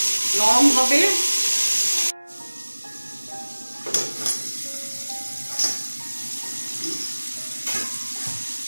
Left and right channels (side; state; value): both; inverted; correlation -1.00